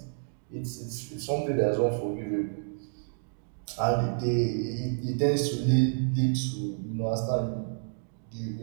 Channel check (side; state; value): left; silent; digital silence